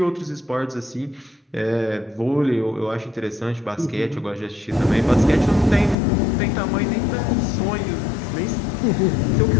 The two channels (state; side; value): drops out; right; at 6.0 s